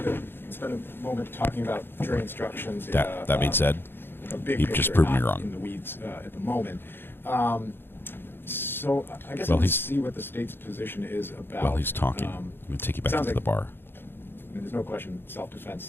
to spend a moment talking about jury instructions. That being said, you've just proven me wrong. In the weeds at the moment. So I guess well, let's see what the state's position is about. Well, he's talking. I'm going to take you back into the bar. There's no question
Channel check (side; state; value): right; late; 0.10 ms